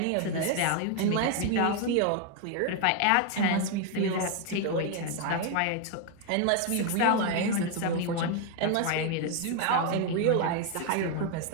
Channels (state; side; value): different; both; correlation 0.01